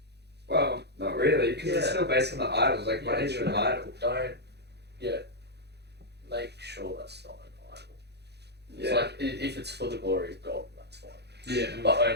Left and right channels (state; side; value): late; left; 0.48 ms